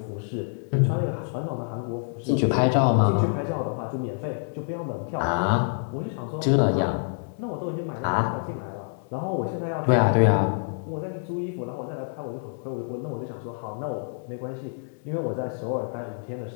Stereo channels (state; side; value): silent; right; digital silence